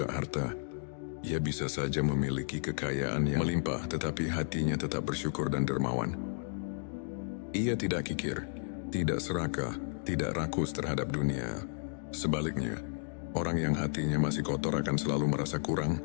harta. Ia bisa saja memiliki kekayaan yang melimpah, tetapi hatinya tetap bersyukur dan dermawan. Ia tidak kikir, tidak serakah, tidak rakus terhadap dunia. Sebaliknya, orang yang hatinya masih kotor akan selalu merasa kurang.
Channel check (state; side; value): silent; right; digital silence